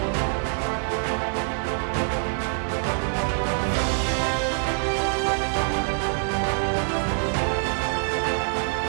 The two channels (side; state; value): left; silent; 56 dB below the other